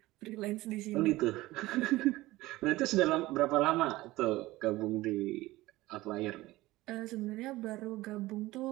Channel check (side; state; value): left; quieter; 18.4 dB